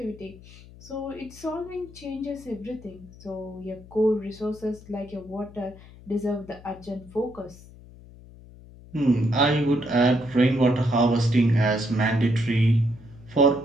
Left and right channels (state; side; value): noise; left; hum, 20 dB below the sound